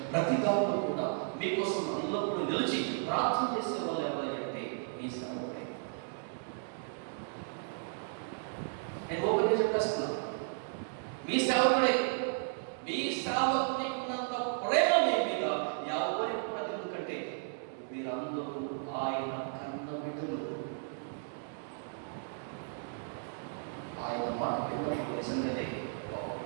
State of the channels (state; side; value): silent; left; digital silence